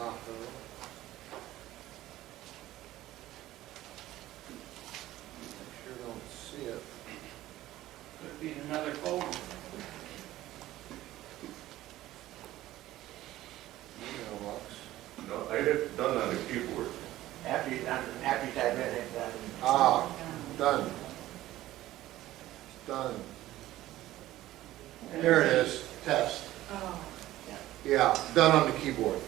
I sure don't see it. Could be in another folder. Mailbox. No, I hit done on the keyboard. After you type it, hit that. Ah, done. Done. There it is, test. Oh. Yeah, done on the keyboard.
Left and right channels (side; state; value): left; quieter; 15.3 dB